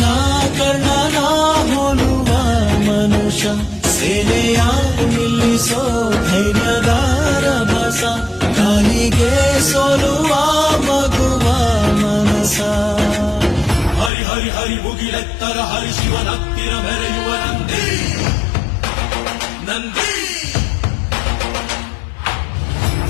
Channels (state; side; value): drops out; right; at 14.1 s